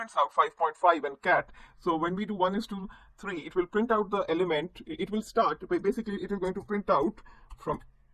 out 5.5 and cat. So when we do 1 is to 3, it will print out the element. It will start, basically it is going to print out from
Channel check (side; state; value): both; identical; correlation 1.00